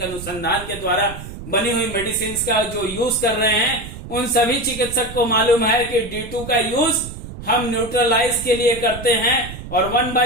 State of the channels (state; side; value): noise; right; rumble, 12 dB below the sound